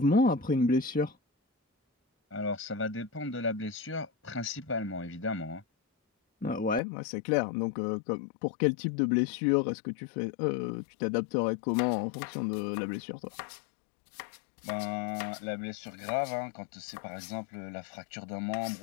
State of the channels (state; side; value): drops out; right; at 6.8 s